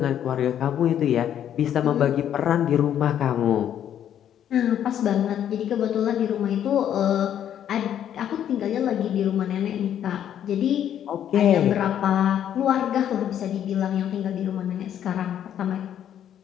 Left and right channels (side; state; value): right; quieter; 10.1 dB